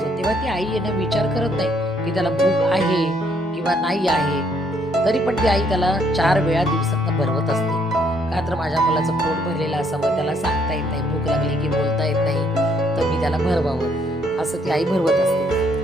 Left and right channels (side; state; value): both; normal; correlation 0.68